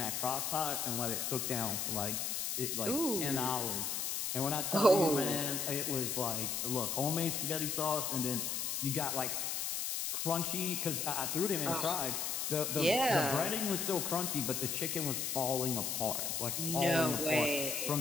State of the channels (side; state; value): left; noise; hiss, 1 dB below the sound